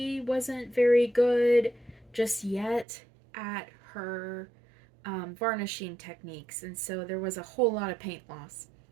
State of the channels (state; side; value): drops out; left; at 2.9 s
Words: wasn't very good just yet at her varnishing techniques. And so there was a whole lot of paint loss.